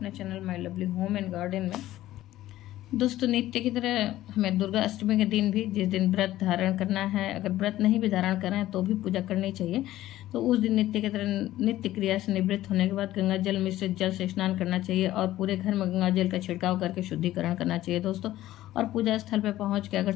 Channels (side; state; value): right; quieter; 14.7 dB